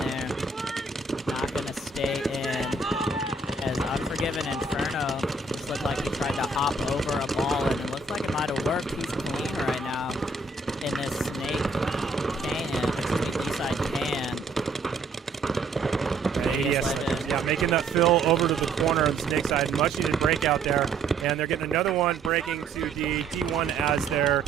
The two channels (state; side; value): quieter; left; 3.7 dB